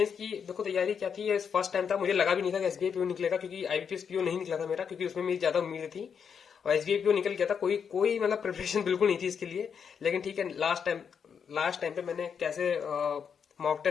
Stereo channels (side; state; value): right; quieter; 7.0 dB